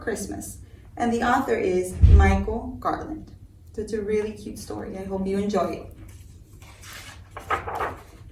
Christmas, and the author is Michael Garland. So it's a really cute story. I hope you enjoy it.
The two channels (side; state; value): both; identical; correlation 1.00